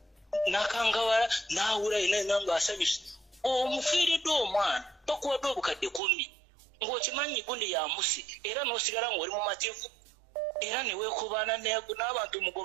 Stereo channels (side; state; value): left; drops out; at 6.0 s